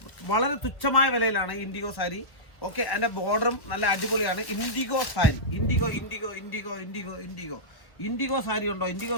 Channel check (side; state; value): right; late; 1.1 ms